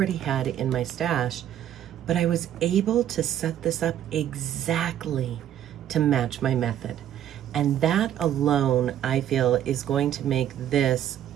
had in my stash. But I was able to set this up exactly to match my method. And that alone, I feel, is going to make this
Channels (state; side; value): quieter; left; 10.9 dB